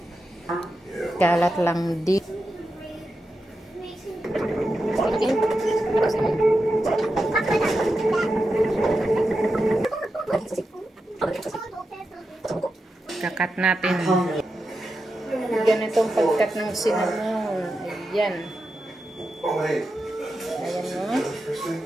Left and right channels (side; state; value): both; normal; correlation 0.89